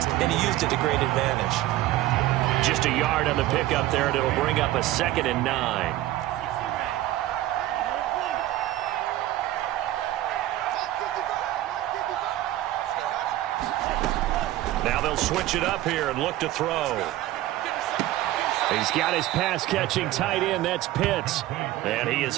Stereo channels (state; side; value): quieter; left; 15.2 dB